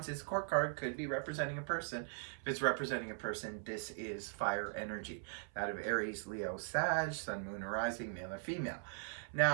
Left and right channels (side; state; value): left; silent; 51 dB below the other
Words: is a court card. Could be representing a person. If it's representing a person, this is fire energy. That of Aries, Leo, Sag, Sun, Moon, or Rising, male or female.